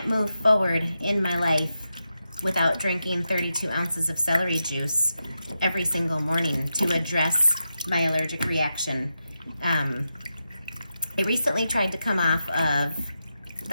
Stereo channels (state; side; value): inverted; both; correlation -0.89